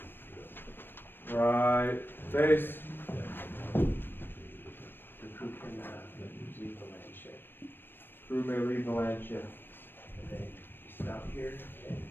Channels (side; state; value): right; late; 0.097 ms